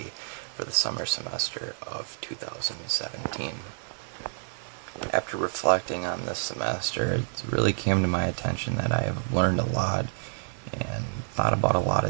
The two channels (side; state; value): left; silent; digital silence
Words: for the summer semester of 2017. After reflecting on this semester, it really came to my attention that I have learned a lot and thought about a lot